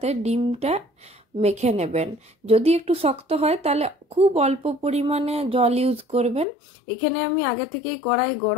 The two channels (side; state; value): right; drops out; at 6.5 s